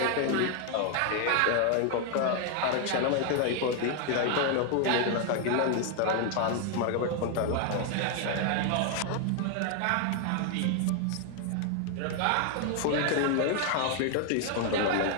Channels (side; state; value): both; different; correlation 0.00